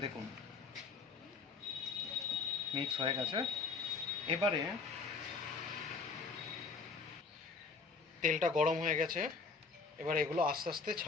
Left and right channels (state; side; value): quieter; right; 4.6 dB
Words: দেখুন মিক্স হয়ে গেছে। এবারে তেলটা গরম হয়ে গেছে, এবার এগুলো আস্তে আস্তে